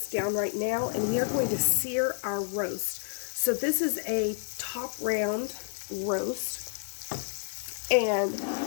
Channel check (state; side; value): silent; right; 58 dB below the other